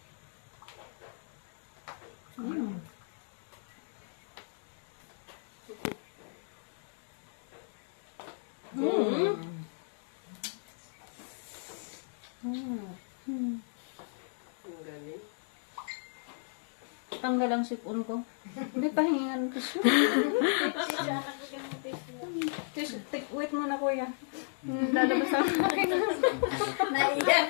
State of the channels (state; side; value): silent; right; digital silence